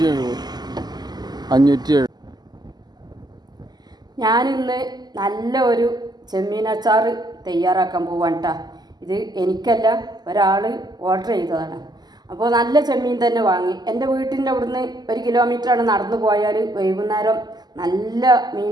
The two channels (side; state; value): left; late; 0.20 ms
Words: 570. ഞാനിന്ന് നല്ല ഒരു ചെമ്മീൻ അച്ചാർ തയ്യാറാക്കാൻ പോവാണ് കേട്ടോ. ഇത് എനിക്കല്ല, ഒരാൾ ഓർഡർ ചെയ്തതാണ്. അപ്പോൾ നല്ല ചെമ്മീൻ തന്നെ വാങ്ങി. എൻ്റെ വീട്ടിൻ്റെ അവിടുന്ന് 1 കിലോമീറ്ററാണ് നടന്നു പോയാൽ വൈകുന്നേരം നല്ല മീൻ